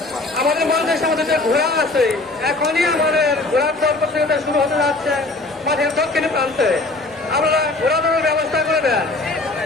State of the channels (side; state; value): right; quieter; 3.1 dB